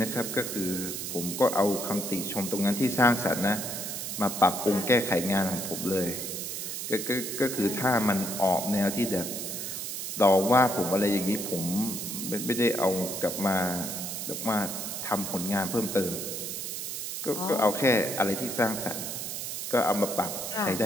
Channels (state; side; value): noise; right; hiss, 5 dB below the sound